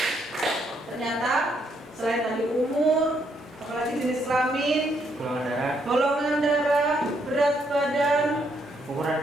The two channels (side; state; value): both; normal; correlation 0.74